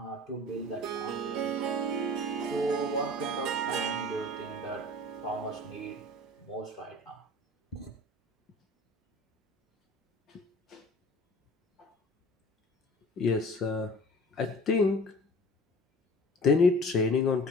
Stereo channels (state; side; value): normal; both; correlation 0.44